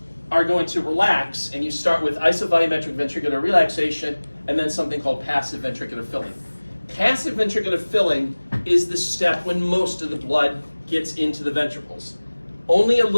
are going to relax, and you start with isovolumetric ventricular relaxation, and then something called passive ventricular filling. Passive ventricular filling is the step when most of the blood gets into the ventricles. Only a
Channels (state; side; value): inverted; both; correlation -1.00